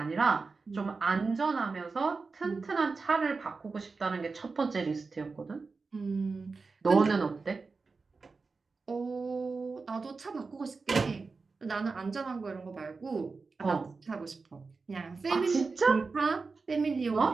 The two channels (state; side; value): quieter; left; 4.3 dB